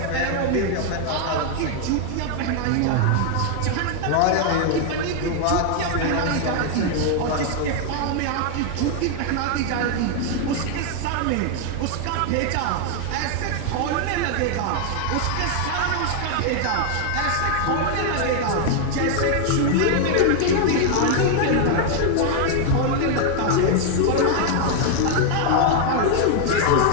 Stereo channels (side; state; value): both; different; correlation 0.00